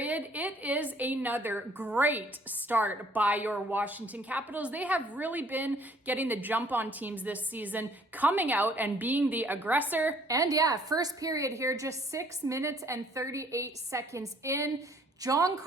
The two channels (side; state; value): both; normal; correlation 0.60